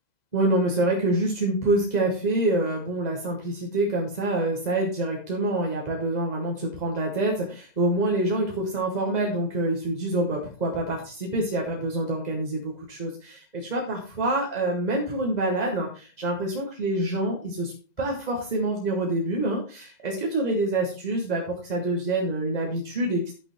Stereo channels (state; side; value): late; right; 2.0 ms